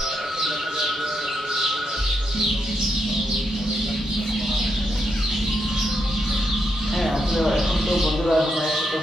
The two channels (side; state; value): both; normal; correlation 0.82